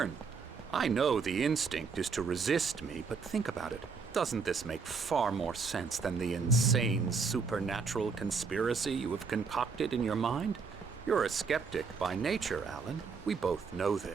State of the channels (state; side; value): quieter; left; 5.2 dB